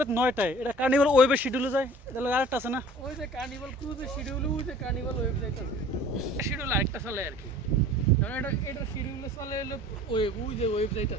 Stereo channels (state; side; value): normal; both; correlation 0.47